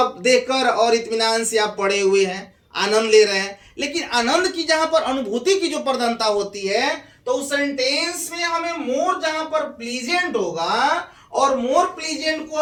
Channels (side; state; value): both; identical; correlation 1.00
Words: देखकर और इत्मीनान से आप पड़े हुए हैं, आनंद ले रहे हैं। लेकिन आनंद की जहां पर अनुभूति की जो प्रधानता होती है, तो उस सेंटेंस में हमें मोर जहां पर प्लीजेंट होगा और मोर प्लीजेंट को